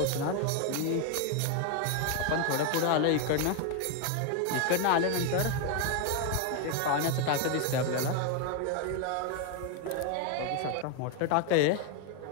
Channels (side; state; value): both; different; correlation 0.01